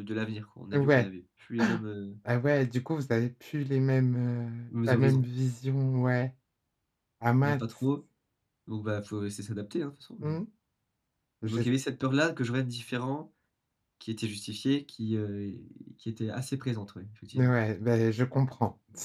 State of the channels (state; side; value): identical; both; correlation 1.00